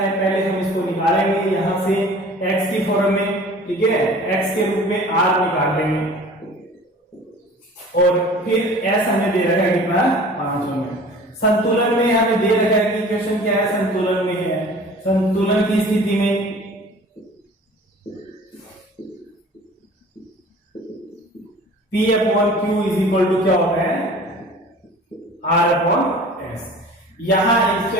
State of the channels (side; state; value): both; normal; correlation 0.45